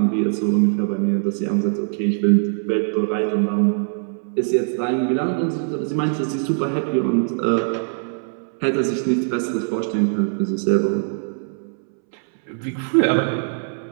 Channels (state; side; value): silent; left; 64 dB below the other